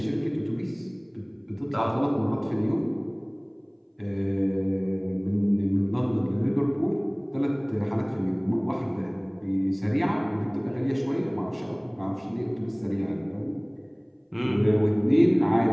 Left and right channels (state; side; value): identical; both; correlation 1.00